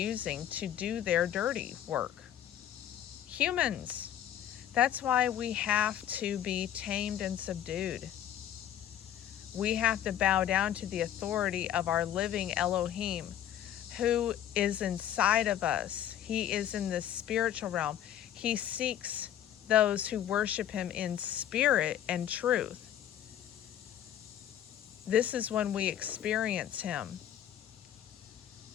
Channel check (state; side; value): quieter; right; 11.0 dB